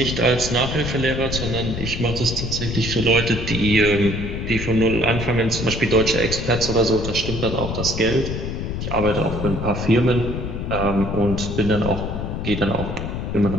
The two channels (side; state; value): left; noise; rumble, 4 dB below the sound